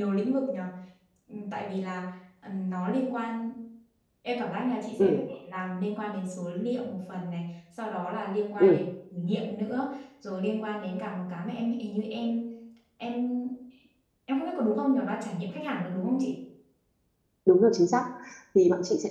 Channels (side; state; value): both; identical; correlation 1.00